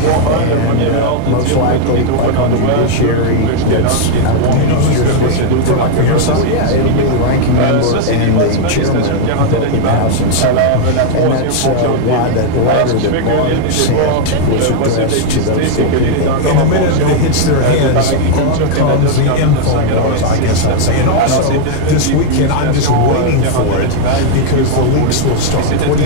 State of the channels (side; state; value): both; different; correlation 0.00